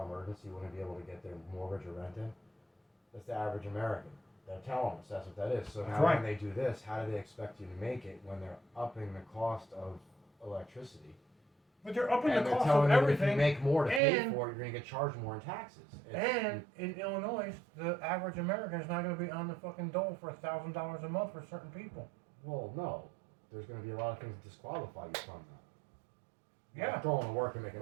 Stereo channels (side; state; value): left; drops out; at 14.0 s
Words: emergency, wouldn't be able to get their mortgage or rent in. That's the average American. They're telling us that's what that is. So now when they do this, how do they expect you to make it when they're upping the cost of electricity? But they're upping and the they're cost telling of you everything. If you make more to pay for it, you're going to get charged more in taxes. And in Illinois, the average American is not going to be on the fucking dole for $1,000 a month for certain people. Well, no. There's going to be a lot of things that disqualify you from that. Yeah. Like going to work and making